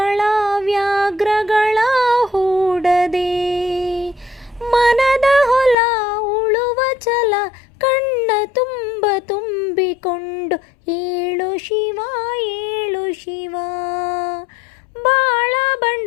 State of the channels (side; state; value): right; drops out; at 5.8 s